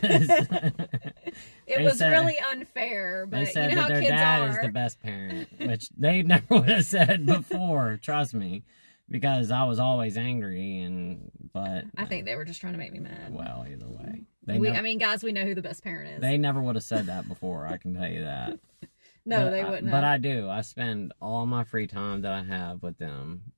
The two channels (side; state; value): both; inverted; correlation -1.00